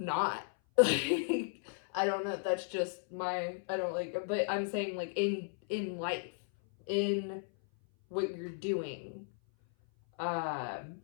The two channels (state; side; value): silent; right; 55 dB below the other